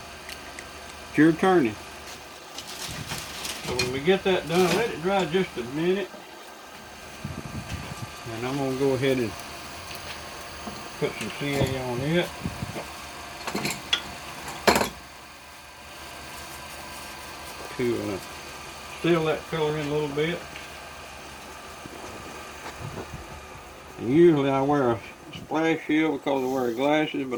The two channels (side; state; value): both; identical; correlation 1.00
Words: your turning. So when we get that done, let it dry just a minute. And I'm going to go ahead and put some CA on it. To seal that color in a little bit. And usually I wear a splash shield because I wear glasses,